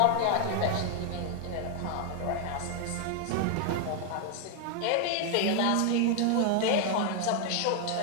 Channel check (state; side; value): different; both; correlation 0.00